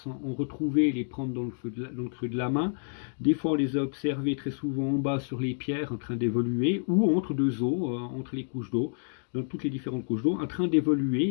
en retrouver et les prendre dans le creux de la main. Des fois on les a observés très souvent en bas sur les pierres en train d'évoluer ou entre deux eaux, entre les couches d'eau, dans toutes les différentes couches d'eau, en train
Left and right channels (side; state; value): right; silent; digital silence